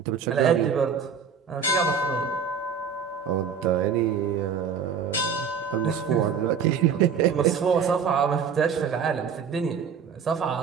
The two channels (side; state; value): left; quieter; 6.6 dB